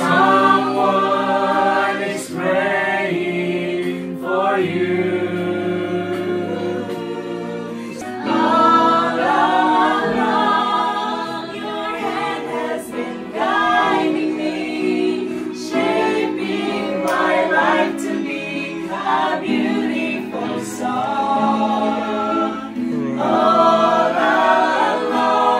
is praying for you. All along, your hand has been guiding me, shaping my life to be a beautiful song. All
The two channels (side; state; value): both; identical; correlation 1.00